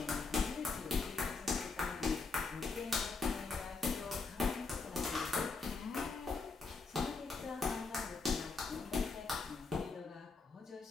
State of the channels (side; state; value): right; quieter; 4.2 dB